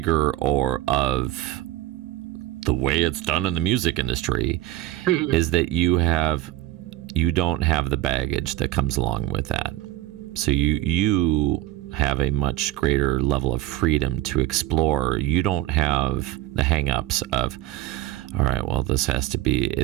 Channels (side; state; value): left; quieter; 14.0 dB